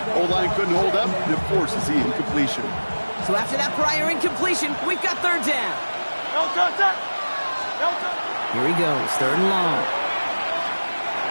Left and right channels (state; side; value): inverted; both; correlation -1.00